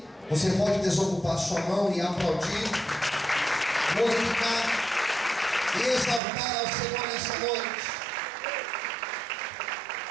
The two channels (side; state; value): left; drops out; at 6.2 s